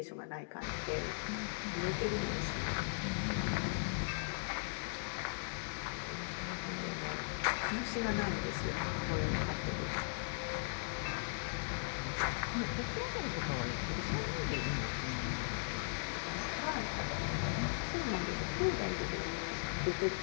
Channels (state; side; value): silent; right; digital silence